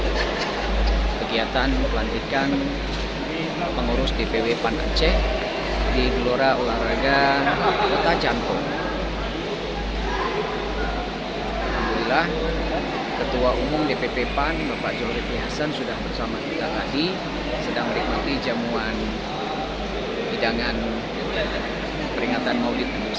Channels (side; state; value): both; identical; correlation 1.00